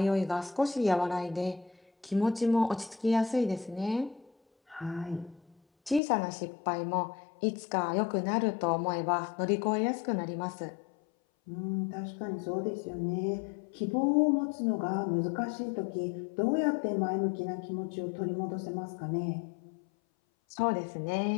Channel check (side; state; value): right; drops out; at 6.0 s